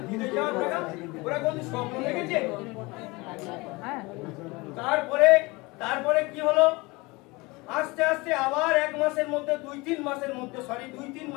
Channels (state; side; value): quieter; right; 24.1 dB